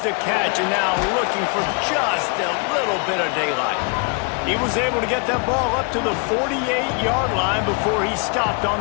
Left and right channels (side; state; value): right; quieter; 35.0 dB